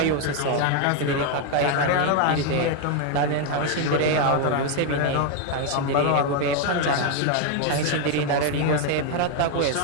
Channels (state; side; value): different; both; correlation 0.01